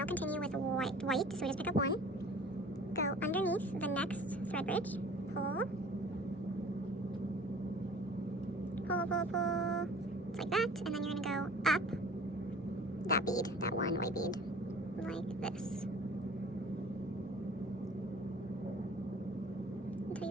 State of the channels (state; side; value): normal; both; correlation 0.47